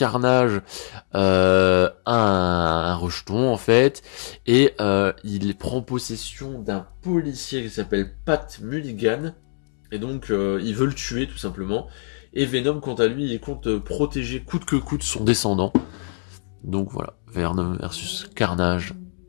a un rejeton en fait, et il prend possession d'un policier qui s'appelle Pat Mulligan, et donc il veut le tuer tout simplement. Et Venom, quant à lui, il compte protéger coûte que coûte son descendant. Donc voilà, Venom versus Carnage.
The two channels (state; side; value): silent; right; digital silence